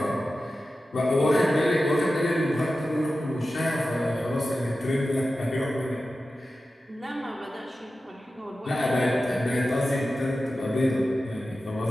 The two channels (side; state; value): both; normal; correlation 0.93